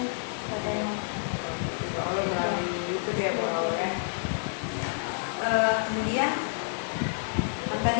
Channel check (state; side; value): silent; right; 59 dB below the other